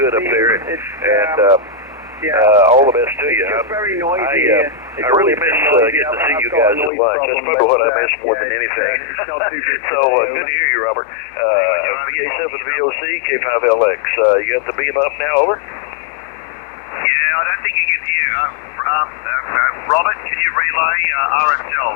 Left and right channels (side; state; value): right; drops out; at 6.9 s